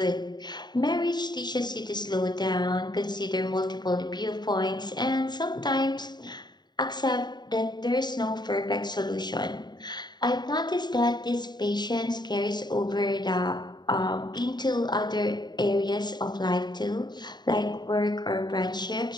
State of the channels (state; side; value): late; right; 0.21 ms